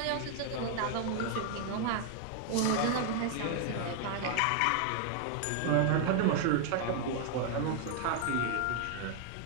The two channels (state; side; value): different; both; correlation 0.00